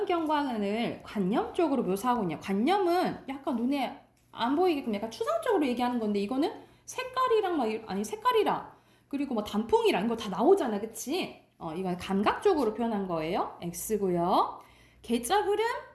관념적으로 묘사하고 있냐. 관념은 약간 눈에 안 보이게끔 약간 추상적으로 얘기하는 건데 이거는 색깔이랑 색깔이랑 그리고 뭐 단풍이랑 이거 다 나오잖아. 그치? 이건 감각적으로 표현한 거예요. X고요. 계절 흐름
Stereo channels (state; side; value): identical; both; correlation 1.00